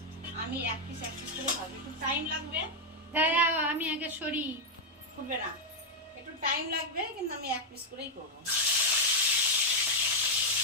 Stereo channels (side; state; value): both; normal; correlation 0.00